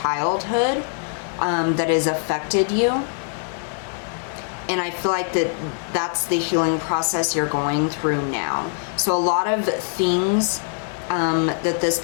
that has affected you, and I feel like that's the healing process you're going through now. So a lot of things that this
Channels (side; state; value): right; silent; digital silence